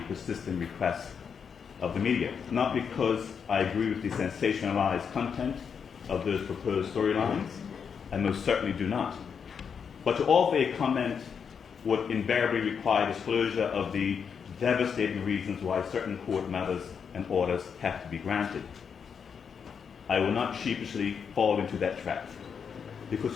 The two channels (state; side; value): quieter; right; 6.7 dB